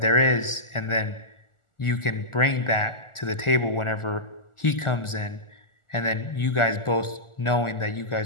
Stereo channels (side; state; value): right; late; 1.4 ms